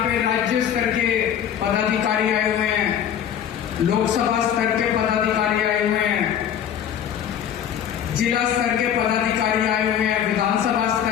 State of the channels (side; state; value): right; quieter; 9.4 dB